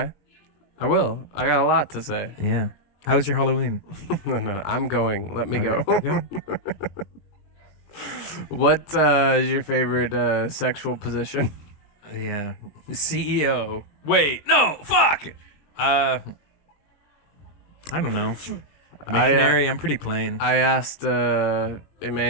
I will. I got a lot to say. Yeah. How was your Halloween? No, I'm going. Let me go. Okay. What is your favorite sexual position? Yeah. CEO. Wait, no, fuck. I don't know. Missionary, I'm pretty plain. I asked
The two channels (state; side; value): late; right; 20 ms